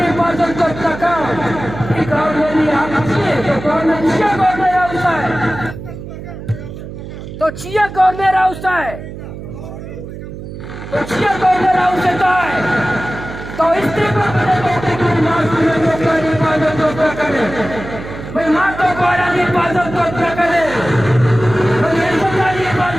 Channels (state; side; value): noise; right; hum, 11 dB below the sound